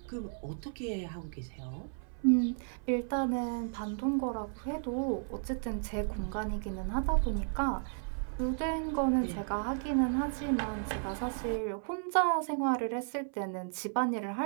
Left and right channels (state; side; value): silent; left; 55 dB below the other